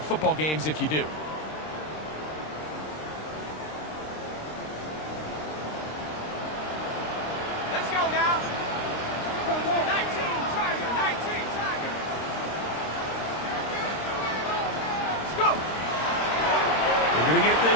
football games if you do. Let's go now. 19, Tiger, 19, Tiger. Let's go. We're going to get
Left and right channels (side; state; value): right; late; 26 ms